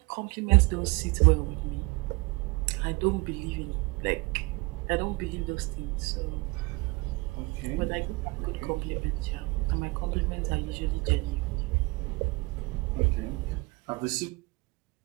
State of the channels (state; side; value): quieter; left; 25.8 dB